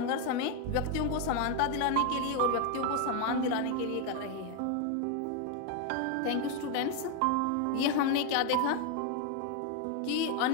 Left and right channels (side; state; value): both; different; correlation 0.01